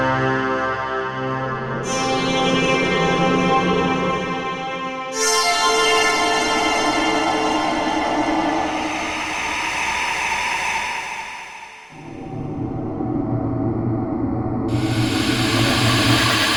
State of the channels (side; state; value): both; identical; correlation 1.00